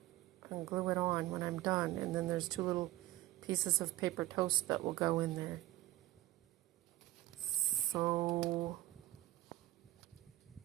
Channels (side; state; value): left; quieter; 16.0 dB